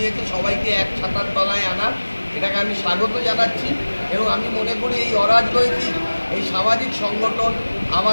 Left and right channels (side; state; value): both; inverted; correlation -1.00